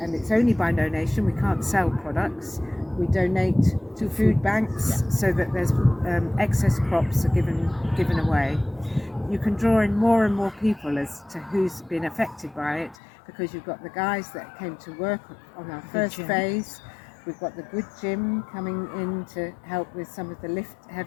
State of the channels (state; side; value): drops out; right; at 13.0 s